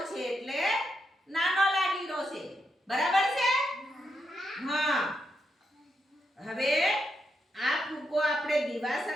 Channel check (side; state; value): both; normal; correlation 0.83